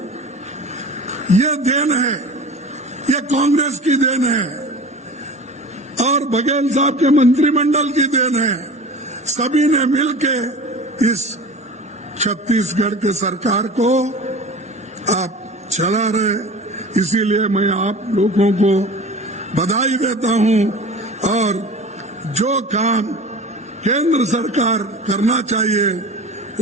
ये देन है, ये कांग्रेस की देन है और बघेल साहब के मंत्रिमंडल की देन है। सभी ने मिलके इस छत्तीसगढ़ के सरकार को आप चला रहे। इसीलिए मैं आप लोगों को बधाई देता हूं और जो काम केंद्र सरकार करना चाहिए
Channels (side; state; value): both; normal; correlation 0.37